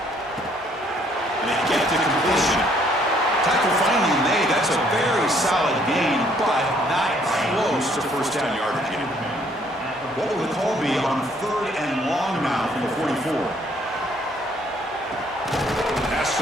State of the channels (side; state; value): both; normal; correlation 0.65